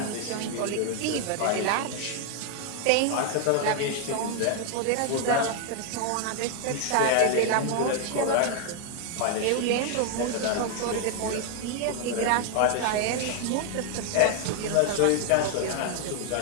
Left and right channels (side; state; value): both; different; correlation 0.00